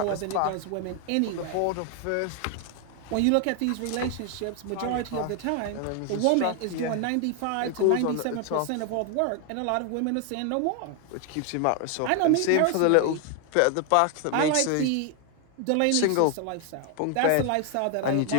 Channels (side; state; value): both; different; correlation 0.01